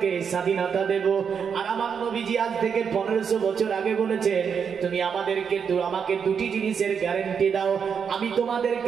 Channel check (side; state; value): left; quieter; 6.8 dB